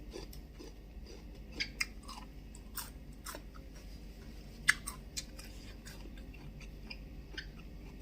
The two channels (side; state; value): both; identical; correlation 1.00